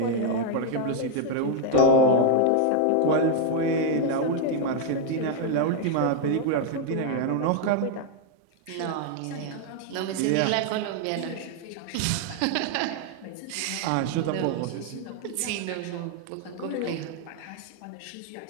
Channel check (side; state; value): both; different; correlation 0.00